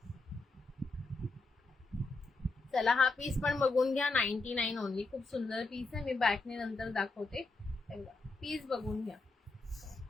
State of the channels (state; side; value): quieter; right; 3.4 dB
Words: चला, हा पीस पण बघून घ्या. 99 ओनली. खूप सुंदर पीस आहे. मी बॅकने नंतर दाखवते. पीस बघून घ्या.